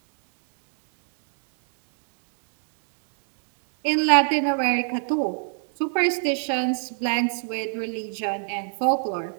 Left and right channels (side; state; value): left; silent; digital silence